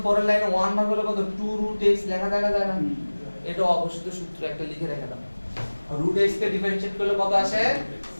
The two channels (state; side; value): inverted; both; correlation -1.00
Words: পরের লাইনে 1 ভাগ হলো কত, 2√x লেখা যায় না, যায় না? এটা অবশ্যই সূত্র একটা লিখে রেখে দাও। √x কে ডিফারেন্সিয়েট করলে কত আসে,